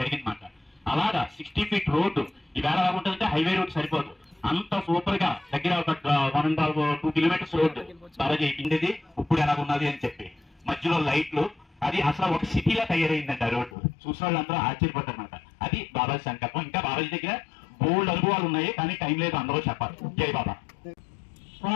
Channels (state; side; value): drops out; right; at 13.8 s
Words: అలాగా 60 feet రోడ్డు ఈవేళ ఎలా ఉంటుందంటే హైవే రోడ్ సరిపోదు, అంత సూపర్ గా దగ్గర ఒక 1.5-2 kilometers రోడ్డు బాబాజీ అయిపోయింది. ఇప్పుడు ఎలా ఉన్నది అని చెప్పి మధ్యలో లైట్లు, అది అసలు ఒక సిటీలా తయారైందంట రోడ్డు. చూసిన వాళ్ళందరూ ఆశ్చర్యపడ్డారన్నమాట. అది బాబాజీ సంకల్పం. ఇంకా బాబాజీ దగ్గర బోల్డ్ అనుభవాలు ఉన్నాయి, కానీ టైం లేదు అందరూ చెప్పాలి. జై బాబా.